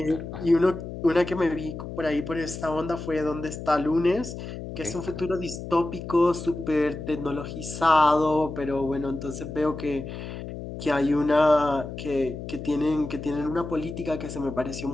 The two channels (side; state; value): left; noise; hum, 9 dB below the sound